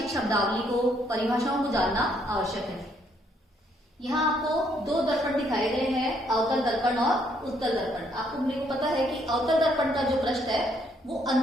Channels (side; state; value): both; normal; correlation 0.70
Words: शब्दावली को, परिभाषाओं को जानना आवश्यक है। यहाँ आपको दो दर्पण दिखाए गए हैं, अवतल दर्पण और उत्तल दर्पण। आपको मेरे को पता है कि अवतल दर्पण का जो पृष्ठ है वो